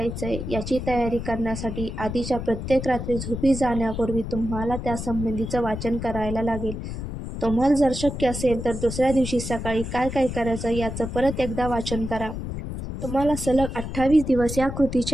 याची तयारी करण्यासाठी आधीच्या प्रत्येक रात्री झोपी जाण्यापूर्वी तुम्हाला त्यासंबंधीचं वाचन करायला लागेल. तुम्हाला जर शक्य असेल तर दुसऱ्या दिवशी सकाळी काय काय करायचं याचं परत एकदा वाचन करा. तुम्हाला सलग 28 दिवस या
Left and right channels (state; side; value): noise; left; rumble, 6 dB below the sound